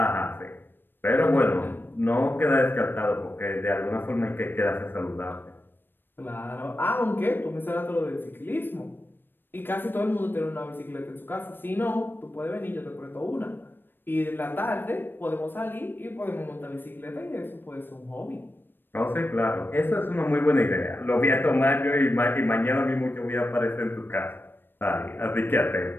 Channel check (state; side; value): late; right; 0.096 ms